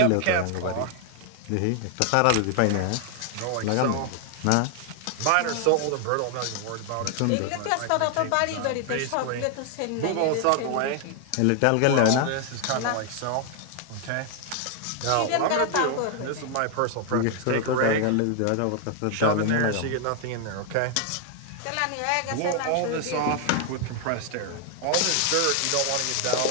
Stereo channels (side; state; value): both; different; correlation 0.00